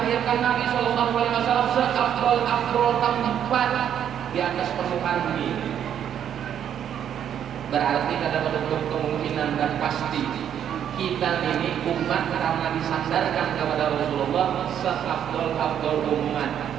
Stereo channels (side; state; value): left; quieter; 9.4 dB